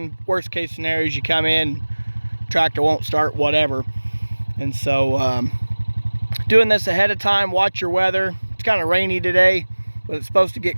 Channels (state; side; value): inverted; both; correlation -1.00